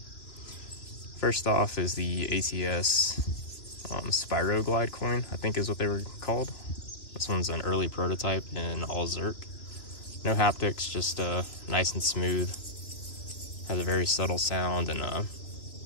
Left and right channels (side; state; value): right; late; 3.0 ms